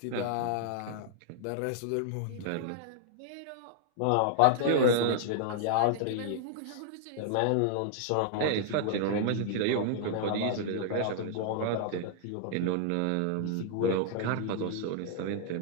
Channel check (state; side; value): different; both; correlation -0.01